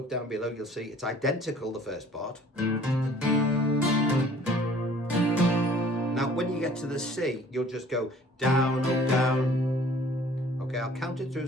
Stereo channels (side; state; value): both; normal; correlation 0.53